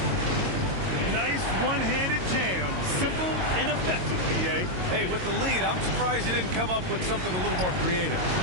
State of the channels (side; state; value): left; late; 22 ms